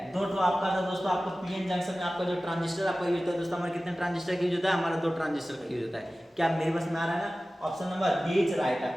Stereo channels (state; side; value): normal; both; correlation 0.96